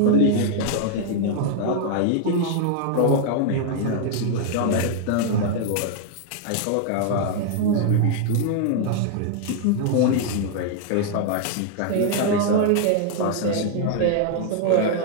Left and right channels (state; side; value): different; both; correlation 0.00